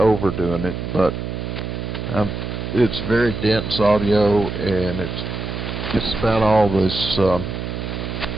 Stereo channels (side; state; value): right; noise; hum, 5 dB below the sound